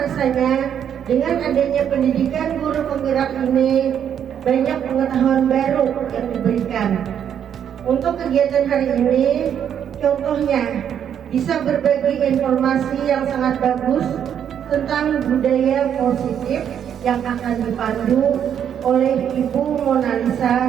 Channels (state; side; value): quieter; left; 8.9 dB